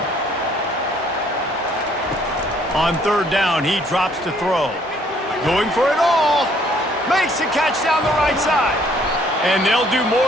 On 3rd down, he drops to throw. Going for it all. Makes the catch down the right side. And they'll do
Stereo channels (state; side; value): normal; both; correlation 0.62